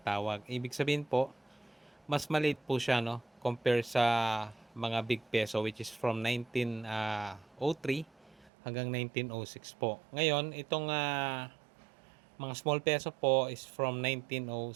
Ibig sabihin po, mas maliit po siya no compare sa mga big peso which is from 1903 hanggang 1906 po. Ngayon, itong mga small peso po is from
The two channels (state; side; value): drops out; left; at 8.5 s